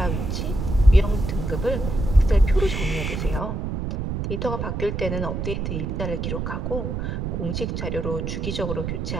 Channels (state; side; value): noise; right; rumble, 3 dB below the sound